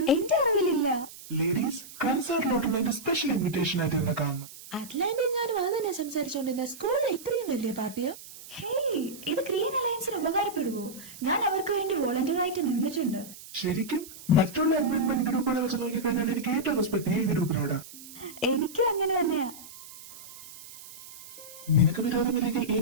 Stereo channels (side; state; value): right; noise; hiss, 16 dB below the sound